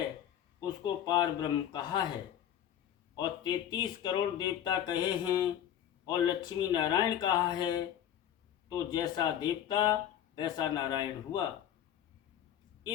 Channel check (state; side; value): quieter; right; 10.4 dB